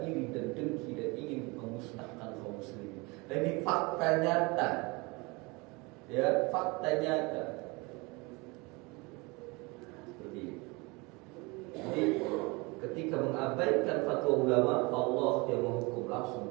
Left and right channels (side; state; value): left; quieter; 26.3 dB